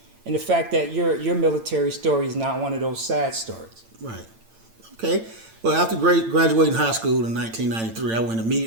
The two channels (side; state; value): left; late; 8.9 ms